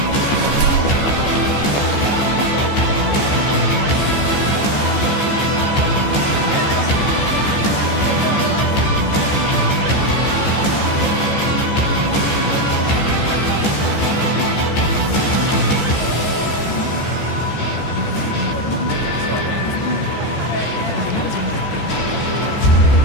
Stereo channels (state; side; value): late; right; 15 ms